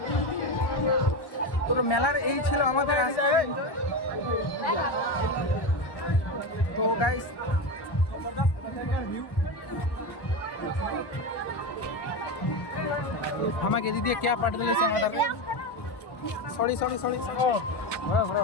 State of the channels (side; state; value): right; late; 1.1 ms